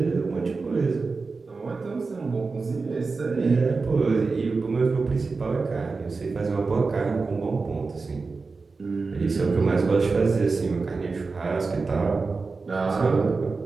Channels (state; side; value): quieter; left; 4.2 dB